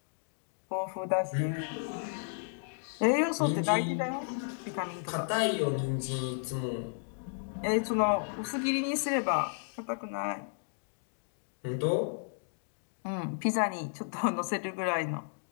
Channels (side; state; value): right; silent; digital silence